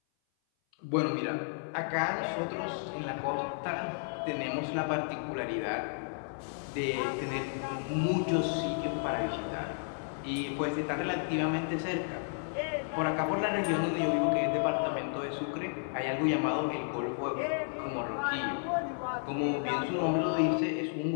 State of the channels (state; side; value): silent; right; 56 dB below the other